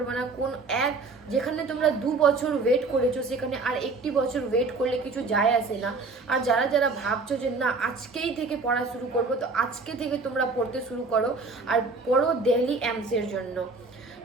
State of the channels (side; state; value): left; quieter; 3.9 dB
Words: না, যেখানে তোমরা 2 বছর ওয়েট করেছো সেখানে আর 1 বছর ওয়েট করলে কিছু যায় আসে না। আর যারা যারা ভাবছো যে না আজকেই থেকে পড়া শুরু করবো, তো আজকে থেকে তোমরা পড়তে শুরু করো, আর পড়ো দিল্লি এমসের জন্য